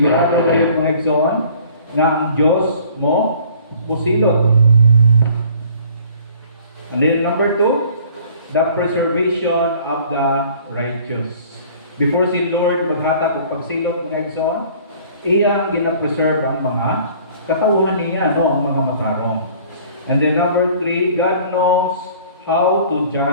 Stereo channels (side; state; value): both; inverted; correlation -0.52